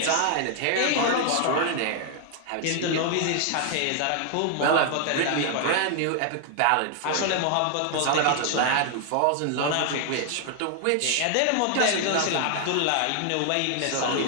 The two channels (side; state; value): both; different; correlation 0.00